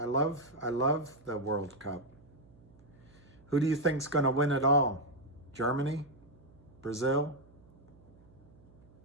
love the World Cup. Who do you think's going to win it all? Germany? Brazil?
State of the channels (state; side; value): noise; right; hum, 25 dB below the sound